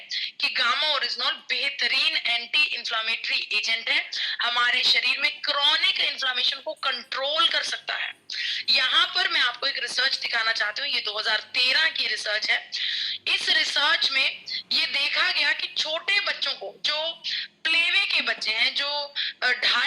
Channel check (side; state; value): both; identical; correlation 1.00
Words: कि गामा ओरिजिनॉल बेहतरीन एंटी इन्फ्लामेटरी एजेंट है, हमारे शरीर में क्रॉनिक इन्फ्लामेशन को कंट्रोल कर सकता है। यहाँ पर मैं आपको एक रिसर्च दिखाना चाहती हूँ, ये 2013 की रिसर्च है। इस रिसर्च में ये देखा गया कि छोटे बच्चों को, जो प्लेवे के बच्चे हैं, जो